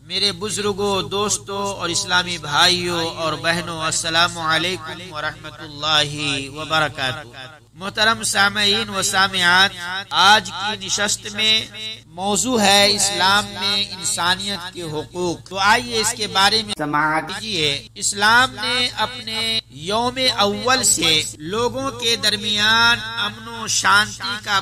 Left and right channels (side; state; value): both; identical; correlation 1.00